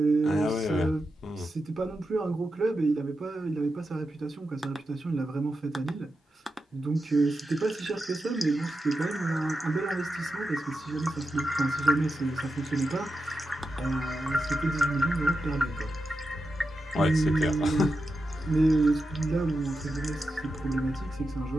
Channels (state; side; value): normal; both; correlation 0.89